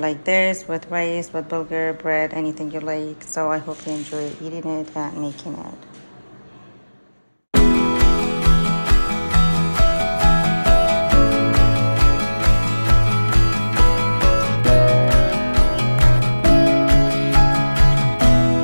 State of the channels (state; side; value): inverted; both; correlation -1.00